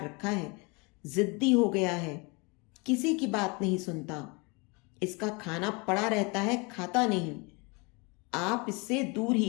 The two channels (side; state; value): right; quieter; 29.1 dB